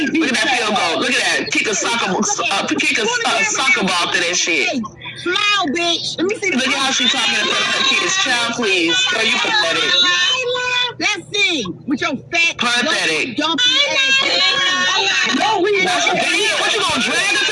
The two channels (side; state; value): both; identical; correlation 1.00